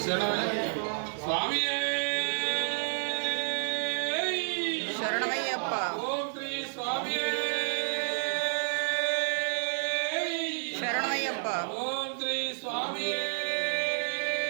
స్వామి శరణమయ్యప్ప. ఓం శ్రీ స్వామి శరణమయ్యప్ప. ఓం శ్రీ స్వామి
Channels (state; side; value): silent; left; 58 dB below the other